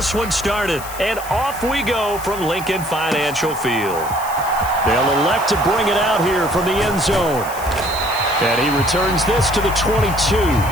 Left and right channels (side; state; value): left; noise; hiss, 14 dB below the sound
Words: one started. And off we go from Lincoln Financial Field. They'll elect to bring it out here from the end zone. And he returns this to the 22.